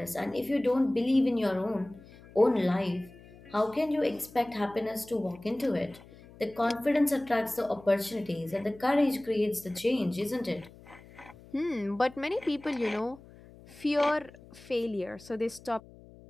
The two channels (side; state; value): left; noise; hum, 21 dB below the sound